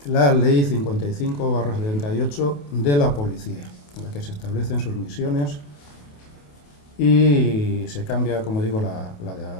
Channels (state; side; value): late; right; 28 ms